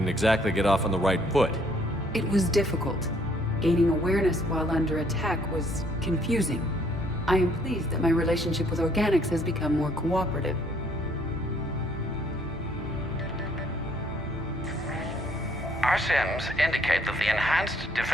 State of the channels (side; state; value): both; normal; correlation 0.64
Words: exactly get off on the right foot. it was difficult. Gaining awareness while under attack was confusing. I am pleased that my relationship with organics has become more cooperative. Our sims indicate that the enhanced